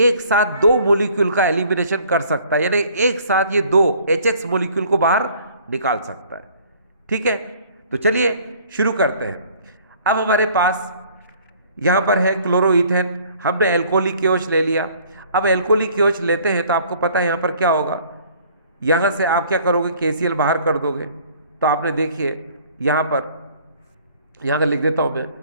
एक साथ 2 मॉलिक्यूल का एलिमिनेशन कर सकता है, यानी एक साथ ये 2 HX मॉलिक्यूल को बाहर निकाल सकता है। ठीक है, तो चलिए शुरू करते हैं। अब हमारे पास यहाँ पर है क्लोरोईथेन, हमने एल्कोहलिक KOH ले लिया। अब एल्कोहलिक KOH लेते हैं तो आपको पता है यहाँ पर क्या होगा, यहाँ से आप क्या करोगे, KCl बाहर कर दोगे। तो आपने देखिए यहाँ का लिख देता हूँ मैं,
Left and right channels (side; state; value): both; inverted; correlation -0.56